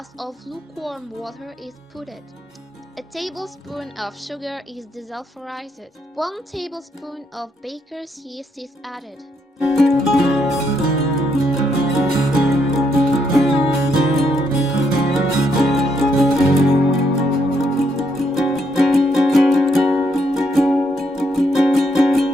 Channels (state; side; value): normal; both; correlation 0.75